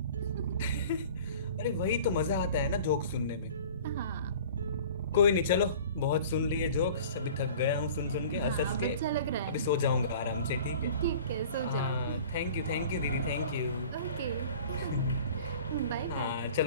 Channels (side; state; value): both; inverted; correlation -0.44